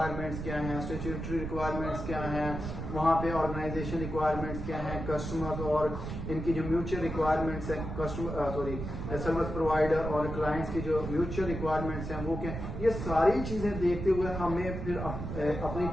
क्या हैं, स्टैट्यूटरी रिक्वायरमेंट्स क्या हैं, वहाँ पे ऑर्गेनाइजेशन रिक्वायरमेंट्स क्या हैं, कस्टमर्स और इनकी जो म्यूचुअल रिक्वायरमेंट्स हैं, कस्टमर सर्विस प्रोवाइडर और क्लाइंट्स की जो म्यूचुअल रिक्वायरमेंट्स हैं वो क्या, ये सारी चीजें देखते हुए हमें फिर अपनी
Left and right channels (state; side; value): noise; right; rumble, 6 dB below the sound